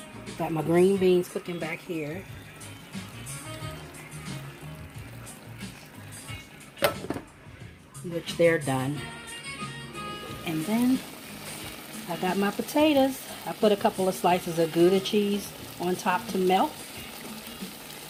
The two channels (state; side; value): identical; both; correlation 1.00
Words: Got my green beans cooking back here. Which they're done. And then I got my potatoes. I put a couple of slices of Gouda cheese on top to melt.